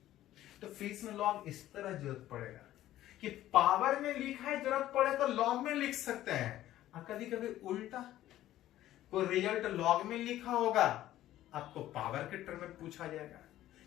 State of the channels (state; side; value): quieter; right; 13.8 dB